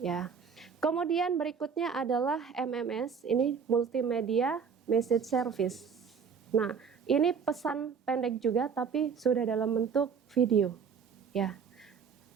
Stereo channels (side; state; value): left; quieter; 6.4 dB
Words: ya. Kemudian berikutnya adalah MMS, ini multimedia message service. Nah, ini pesan pendek juga tapi sudah dalam bentuk video, ya.